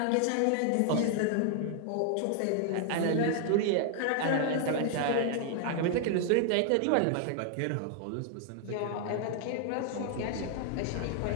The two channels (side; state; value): both; different; correlation 0.00